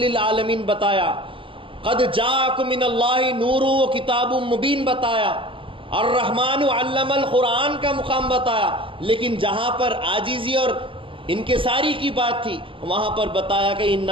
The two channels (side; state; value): left; late; 0.25 ms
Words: بتایا، قد جاءکم من اللہ نور و کتاب مبین بتایا، الرحمن علم القرآن کا مقام بتایا، لیکن جہاں پر عاجزی اور انکساری کی بات تھی وہاں پر بتایا کہ